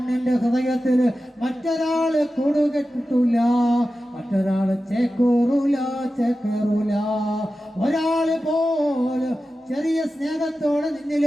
ഹൃദയത്തിൽ മറ്റൊരാള് കൂടുകെട്ടിട്ടില്ല, മറ്റൊരാള് ചേക്കേറൂല. ഒരാള് പോലും ചെറിയ സ്നേഹത്തോടെ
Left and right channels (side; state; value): both; normal; correlation 0.93